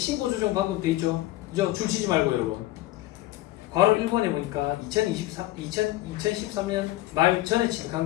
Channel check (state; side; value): quieter; right; 16.6 dB